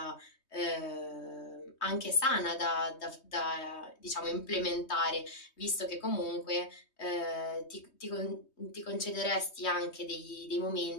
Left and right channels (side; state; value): right; late; 3.2 ms